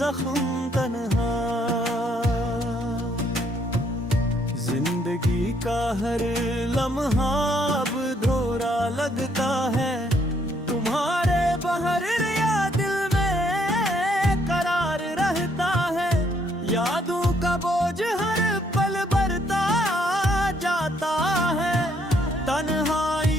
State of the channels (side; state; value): both; normal; correlation 0.69